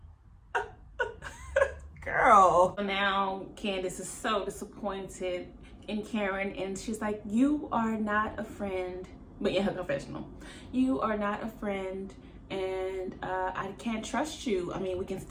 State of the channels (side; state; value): both; identical; correlation 1.00